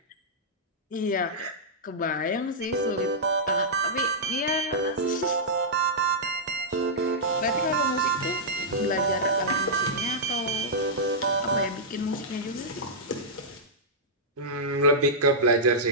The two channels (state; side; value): normal; both; correlation -0.11